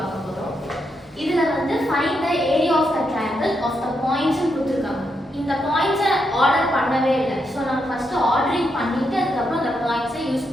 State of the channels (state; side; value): normal; both; correlation 0.82